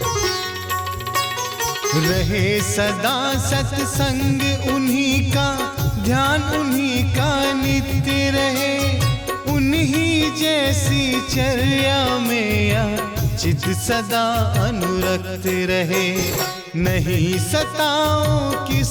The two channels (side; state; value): both; identical; correlation 1.00